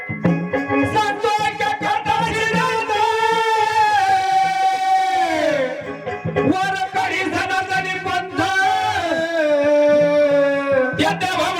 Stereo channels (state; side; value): identical; both; correlation 1.00